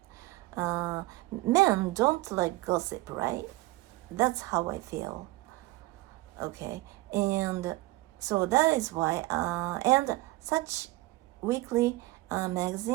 Men don't like gossip, right? That's how I feel. Okay, and so that is why, and such weekly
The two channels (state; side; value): quieter; left; 20.0 dB